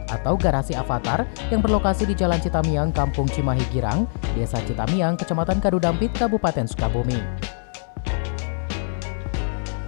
atau Garasi Avatar yang berlokasi di Jalan Citamiang, Kampung Cimahi Girang, Desa Citamiang, Kecamatan Kadudampit, Kabupaten Sukabumi.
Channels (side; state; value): right; silent; 62 dB below the other